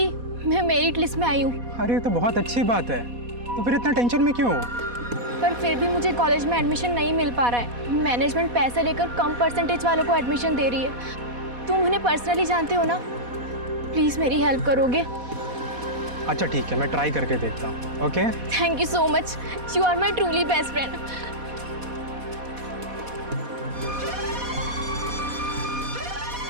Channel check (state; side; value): late; left; 4.1 ms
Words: मैं मेरिट लिस्ट में आई हूँ। अरे तो बहुत अच्छी बात है, तो फिर इतना टेंशन में क्यों? पर फिर भी मुझे कॉलेज में एडमिशन नहीं मिल पा रहा है। मैनेजमेंट पैसे लेकर कम परसेंटेज वालों को एडमिशन दे रही है। तुम उन्हें पर्सनली जानते हो ना, प्लीज़ मेरी हेल्प करोगे? अच्छा ठीक है, मैं ट्राई करके देखता हूँ। Okay, thank you so much, you are my truly best friend.